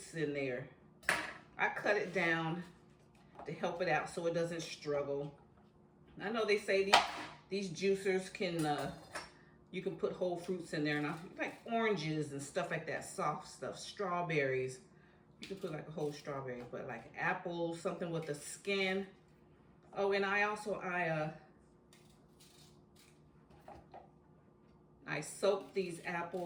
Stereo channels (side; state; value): both; identical; correlation 1.00